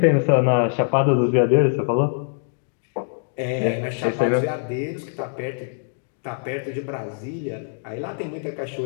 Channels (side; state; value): right; silent; digital silence